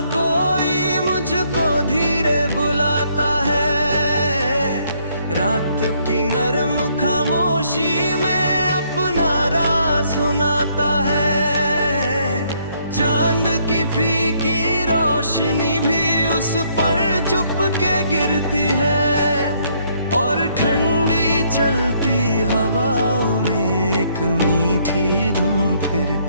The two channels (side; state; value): both; inverted; correlation -0.69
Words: कोई मुझको धीरे बुलाता है, रात की नरम खामोशी में अपना राज सुनाता है। चांद की फीकी रोशनी भी उस पर चुप के गिरती है, और ठंडी चलती हवाओं में एक मीठी धुन